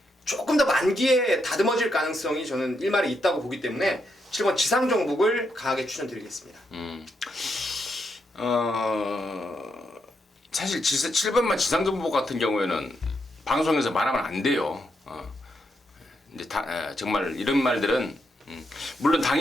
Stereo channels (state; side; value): normal; both; correlation 0.81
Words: 조금 더 만기에 다듬어질 가능성이 저는 1마리 있다고 보기 때문에 7번 지상정복을 강하게 추천드리겠습니다. 사실 7번만 지상정복 같은 경우에는 방송에서 말하면 안 돼요. 이제 정말 이런 말들은 물론